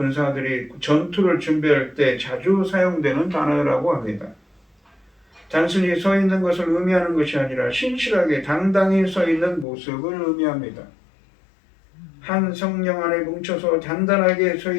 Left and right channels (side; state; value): right; drops out; at 9.7 s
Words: 전투를 준비할 때 자주 사용되는 단어라고 합니다. 단순히 서 있는 것을 의미하는 것이 아니라 신실하게 당당히 서 있는 모습을 의미합니다. 한 성령 안에 뭉쳐서 단단하게 서